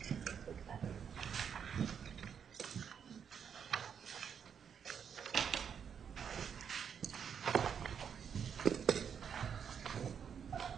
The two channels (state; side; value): quieter; left; 7.5 dB